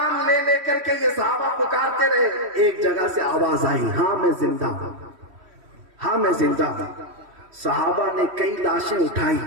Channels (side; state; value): left; late; 3.1 ms